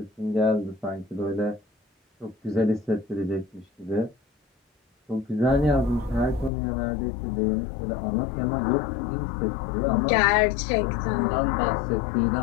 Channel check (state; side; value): drops out; right; at 6.5 s